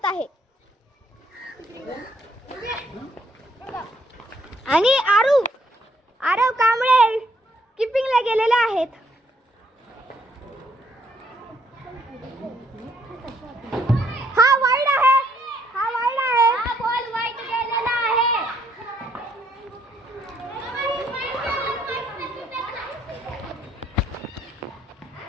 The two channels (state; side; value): normal; both; correlation 0.69